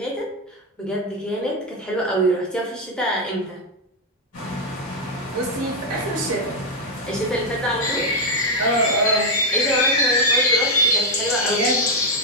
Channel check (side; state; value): both; normal; correlation 0.03